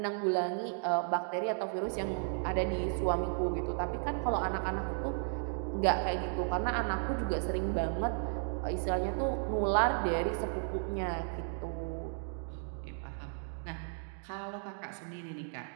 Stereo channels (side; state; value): left; silent; 55 dB below the other